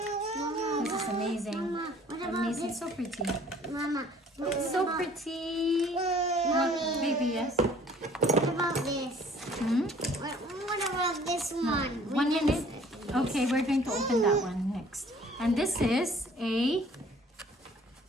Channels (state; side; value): normal; both; correlation 0.55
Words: This is amazing. Mama, what about Amazing. this? So pretty. Mama, what It's so about- pretty. Mommy, Baby, yes. what about this? Hmm? What about this one? 1 minute. Okay, we're going to open that one next. And this is a